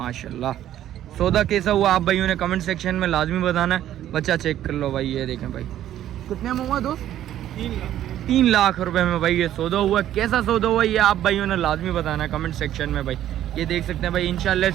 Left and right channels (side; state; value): left; quieter; 12.0 dB